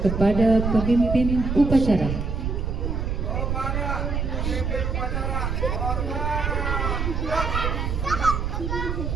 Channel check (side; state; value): right; noise; rumble, 1 dB below the sound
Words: kepada pemimpin upacara.